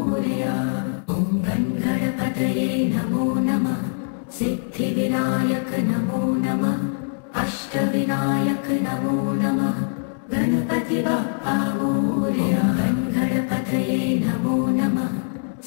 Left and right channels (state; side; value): silent; right; 64 dB below the other